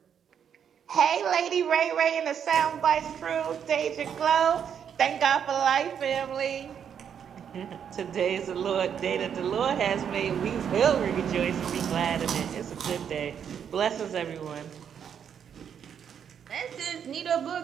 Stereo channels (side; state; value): left; quieter; 8.1 dB